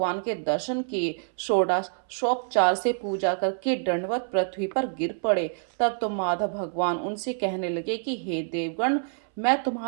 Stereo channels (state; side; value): silent; left; 60 dB below the other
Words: के दर्शन किए, षोडशोपचार से पूजा करके दंडवत पृथ्वी पर गिर पड़े। तब तो माधव भगवान उनसे कहने लगे कि हे देवगण, मैं